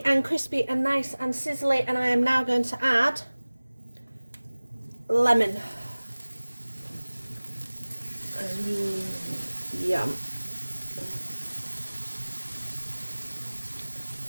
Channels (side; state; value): both; inverted; correlation -1.00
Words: and crispy and nice and sizzly, and I am now going to add lemon. Yum.